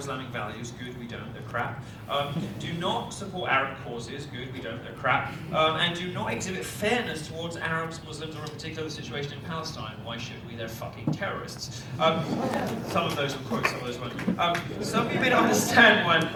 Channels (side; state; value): both; identical; correlation 1.00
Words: values. Good, we don't, they're crap. Do not support Arab causes. Good, we don't, they're crap. And do not exhibit fairness towards Arabs, Muslims, or in particular the situation in Palestine. Why should we? They're fucking terrorists. Some of those will quote, some of those won't. Some of you may not understand why I'm